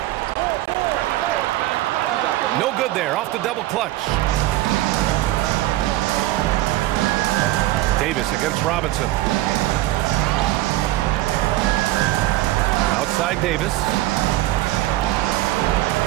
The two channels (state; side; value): quieter; left; 16.4 dB